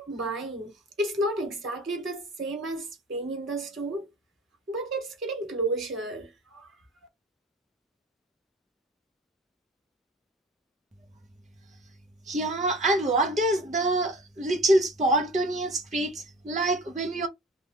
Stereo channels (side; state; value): both; normal; correlation 0.40